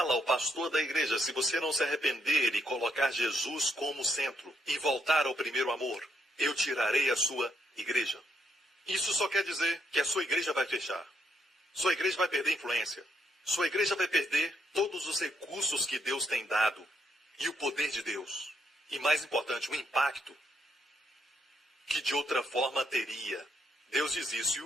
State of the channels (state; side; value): normal; both; correlation 0.76